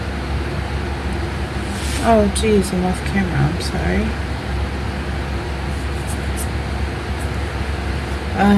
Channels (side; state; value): both; identical; correlation 1.00